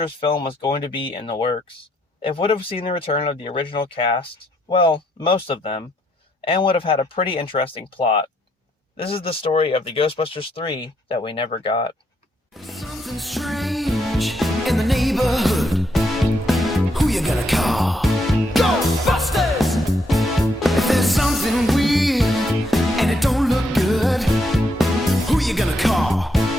film was going to be in the works. It would have seen the return of the original cast, well, most of them, and would have had a pretty interesting plot. This is the story of the Ghostbusters 3 that we never got. Something strange in the neighborhood. Who you gonna call? Ghostbusters! If there's something weird and it don't look good, who you gonna call?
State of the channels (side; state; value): both; normal; correlation 0.75